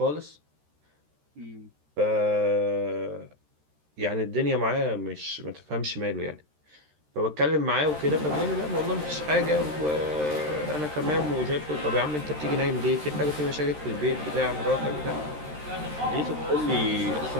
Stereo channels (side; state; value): left; late; 13 ms